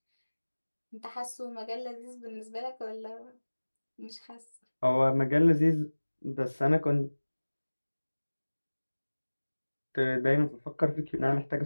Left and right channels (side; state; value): both; inverted; correlation -1.00